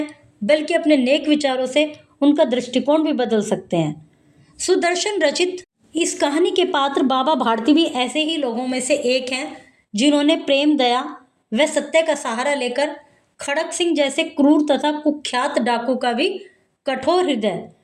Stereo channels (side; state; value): both; identical; correlation 1.00